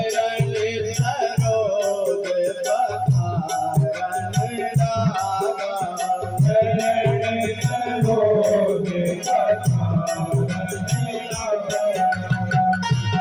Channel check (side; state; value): both; identical; correlation 1.00